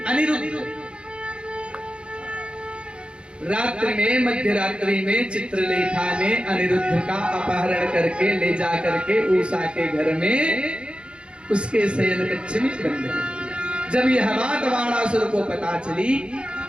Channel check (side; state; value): left; late; 0.056 ms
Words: अनिरुद्ध। रात्रि में, मध्य रात्रि में चित्रलेखा ने अनिरुद्ध का अपहरण करके ले जा करके उषा के घर में उसके शयन कक्ष में बंद कर दिया। जब यह बात वाणासुर को पता चली